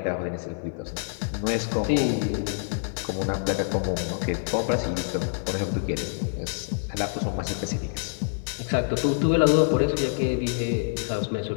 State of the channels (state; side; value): silent; right; 61 dB below the other